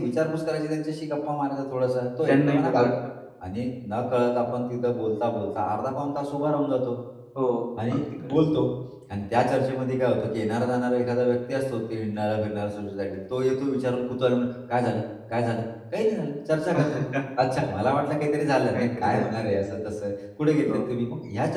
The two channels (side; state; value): both; identical; correlation 1.00